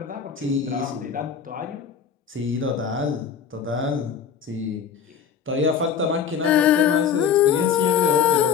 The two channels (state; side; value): quieter; right; 7.4 dB